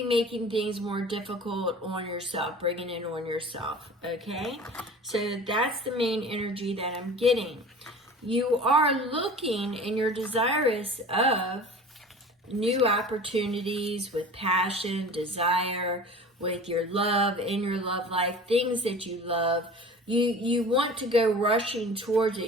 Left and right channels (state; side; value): normal; both; correlation 0.40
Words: making things more difficult on yourself, bringing it on yourself, okay? So that's the main energy that I'm getting. You are looking and you're desirous of new opportunities with passion, desire, with your love, in your love life, things that you love. You want to go rushing towards